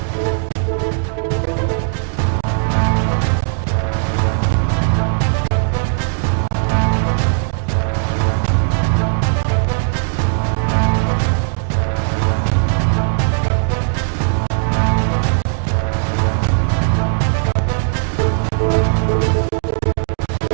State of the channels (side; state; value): left; silent; 57 dB below the other